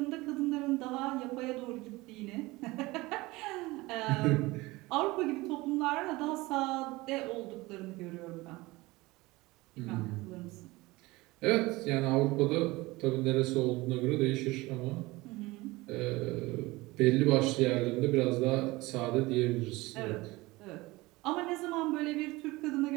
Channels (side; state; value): left; quieter; 21.2 dB